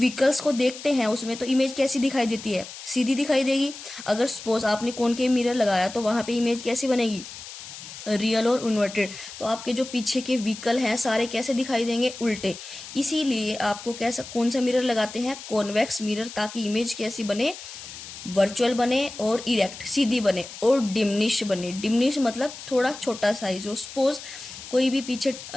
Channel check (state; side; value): noise; left; hiss, 13 dB below the sound